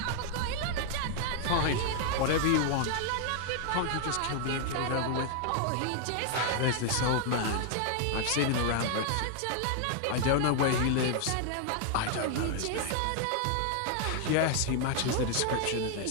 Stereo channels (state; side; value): different; both; correlation 0.00